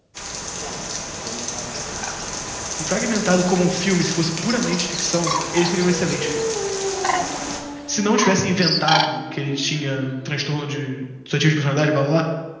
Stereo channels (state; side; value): identical; both; correlation 1.00